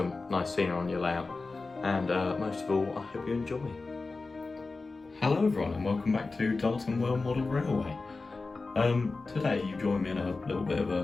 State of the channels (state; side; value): quieter; right; 3.8 dB